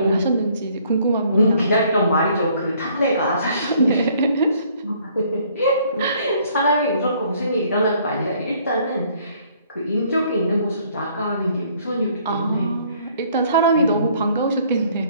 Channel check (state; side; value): inverted; both; correlation -0.62